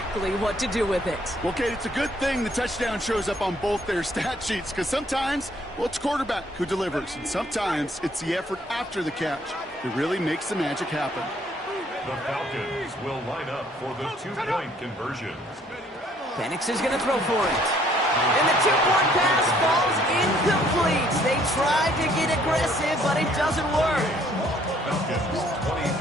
what to do with it. Well, Kate, it's a good thing the touchdown shows up on both their stat sheets, because sometimes, well, it's quarterback who delivers, and sometimes it's the effort after the catch that really makes the magic happen. The Falcons will line up for the 2-point conversion. Penix is going to throw for it. And the 2-point pass falls incomplete. They tried to get aggressive, but it doesn't work. Falcons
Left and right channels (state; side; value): normal; both; correlation 0.63